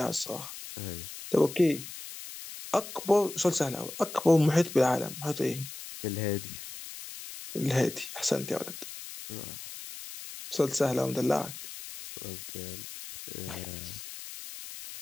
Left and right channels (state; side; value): noise; left; hiss, 11 dB below the sound